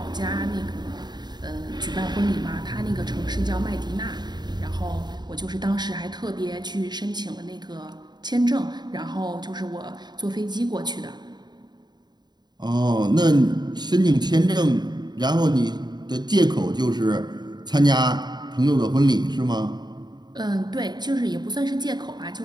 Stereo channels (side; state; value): left; late; 0.20 ms